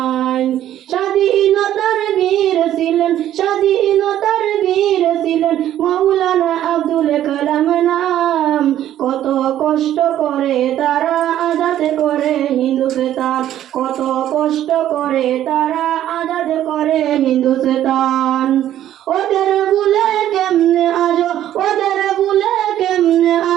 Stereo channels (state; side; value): quieter; left; 11.9 dB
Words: স্বাধীনতার বীর ছিলেন, স্বাধীনতার বীর ছিলেন মাওলানা আব্দুল কালাম নাম, কত কষ্ট করে তারা আজাদ করে হিন্দুস্তান, কত কষ্ট করে তারা আজাদ করে হিন্দুস্তান। ওদের ভুলে কেমনে আজো, ওদের ভুলে কেমনে